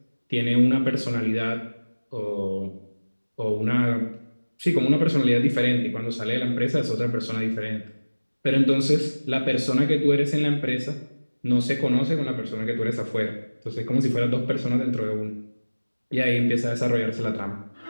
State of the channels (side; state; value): both; inverted; correlation -1.00